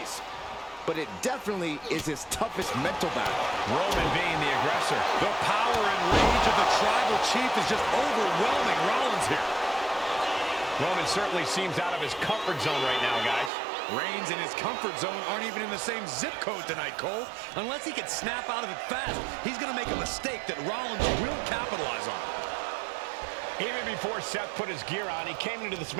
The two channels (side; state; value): left; drops out; at 13.5 s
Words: but it definitely is his toughest mental battle. Roman being the aggressor. The power and rage of the Tribal Chief is just overwhelming Rollins here. Roman certainly seems out of his comfort zone right now, guys. Reigns and his comfort zone aren't even in the same zip code tonight, Cole. Unless he can snap out of it fast, he's going to make a mistake that Rollins will capitalize on. Even before Seth put his gear on, he came into this